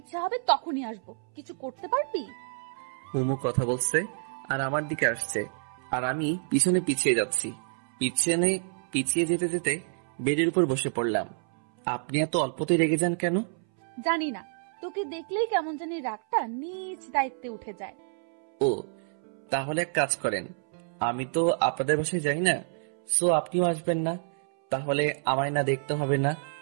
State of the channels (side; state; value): left; silent; 59 dB below the other